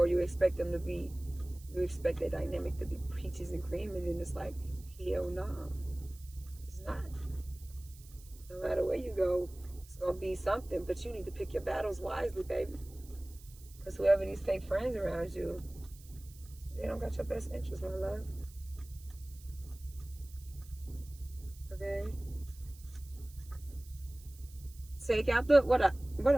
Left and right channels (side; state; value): right; noise; hiss, 22 dB below the sound